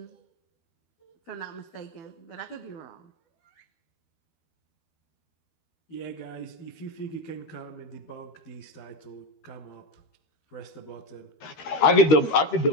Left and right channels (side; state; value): right; late; 12 ms